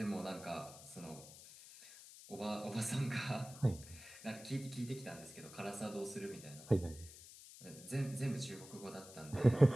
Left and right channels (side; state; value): left; noise; hiss, 16 dB below the sound